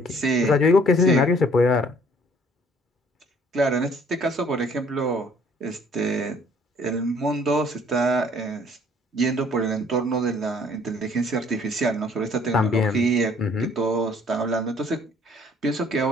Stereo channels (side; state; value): both; normal; correlation 0.58